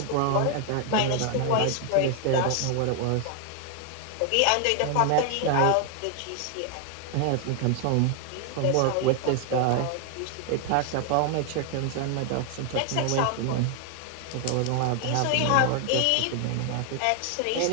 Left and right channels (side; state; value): both; different; correlation 0.00